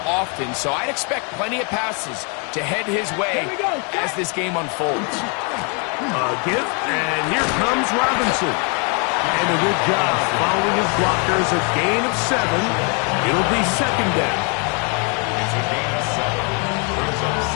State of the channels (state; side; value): quieter; right; 36.5 dB